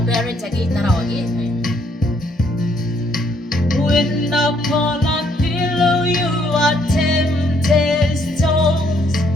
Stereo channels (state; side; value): normal; both; correlation 0.69